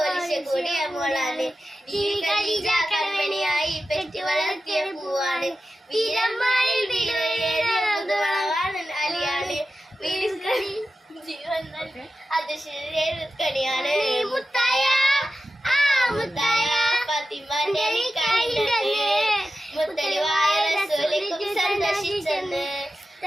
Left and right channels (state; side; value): normal; both; correlation 0.92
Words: കൂടിയ മോളാണ് ഈ ഖദീജ കൺമണിയായി പെറ്റു വളർത്തിയ പൂവാണ് വീരന്മാരിൽ വീരവാണ് അലിയാണ് ജീവൻ അത് ശരീരക്കണിയാണ് മുത്തായ മുത്തായ ഫാത്തിമാന്റെ നിക്കാഹിണ്ടെന്ന് മുത്തലുവായ റസൂലിക്കും സന്തോഷിച്ചെന്ന്